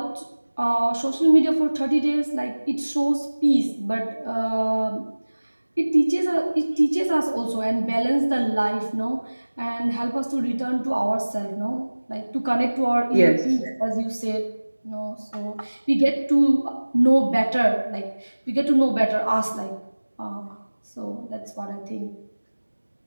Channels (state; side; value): inverted; both; correlation -1.00